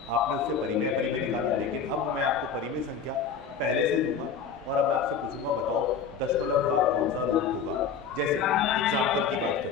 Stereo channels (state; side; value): quieter; right; 6.4 dB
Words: आपने उससे परिमेय अपरिमेय निकाला, लेकिन अब मैं आपको परिमेय संख्या पहले से दूंगा और अब मैं आपसे पूछूंगा बताओ दशमलव का कौन सा रूप होगा। जैसे एग्जाम्पल की बात